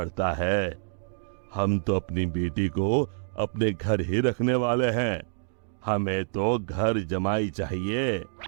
है, हम तो अपनी बेटी को अपने घर ही रखने वाले हैं। हमें तो घर जमाई चाहिए।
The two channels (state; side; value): silent; left; digital silence